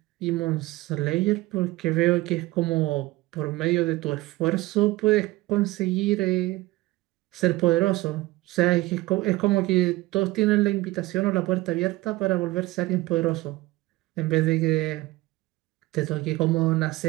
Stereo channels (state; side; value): quieter; left; 19.2 dB